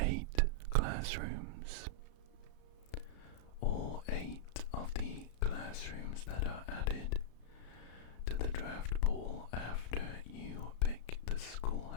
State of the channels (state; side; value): late; right; 34 ms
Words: classrooms. All 8 of the classrooms that are added to the draft pool after you pick the